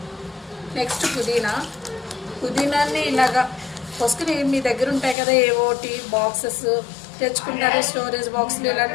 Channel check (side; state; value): right; drops out; at 5.2 s